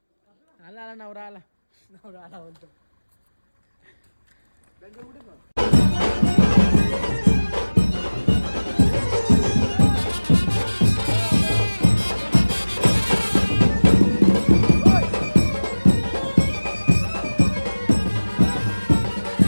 आला आला नवरा आला. नवरा आला म्हणतो.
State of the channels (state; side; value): inverted; both; correlation -1.00